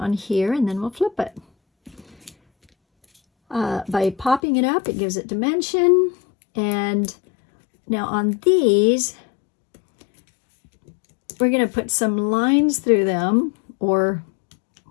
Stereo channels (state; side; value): drops out; right; at 4.4 s